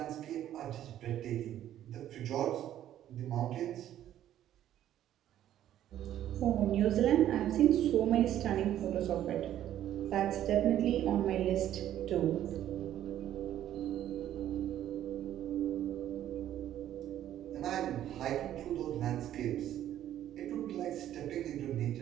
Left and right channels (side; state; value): left; quieter; 11.8 dB